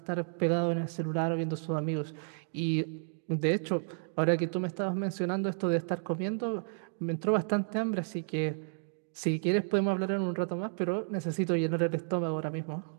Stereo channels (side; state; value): left; silent; digital silence